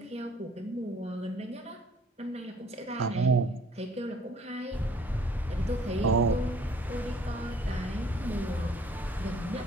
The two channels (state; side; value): normal; both; correlation 0.57